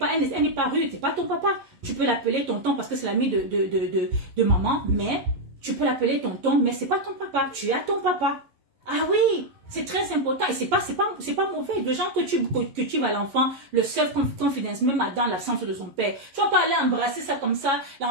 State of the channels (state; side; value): late; left; 11 ms